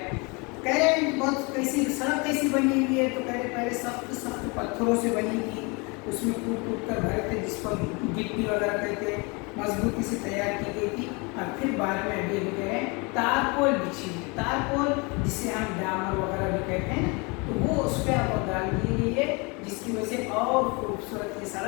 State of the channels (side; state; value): right; quieter; 29.1 dB